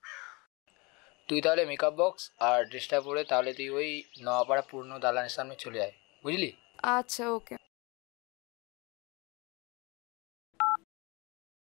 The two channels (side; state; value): right; quieter; 26.8 dB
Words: তুই তাহলে মেকআপ বক্স আর ড্রেসটা পরে তাহলে তুই ওই নওয়াপাড়া পুরনো দালানের সামনে চলে আয় বুঝলি। আচ্ছা, ওকে।